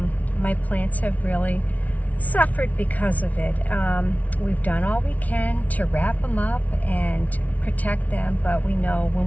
my plants have really suffered because of it. We've done all we can to wrap them up and protect them, but we know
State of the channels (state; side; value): late; right; 0.070 ms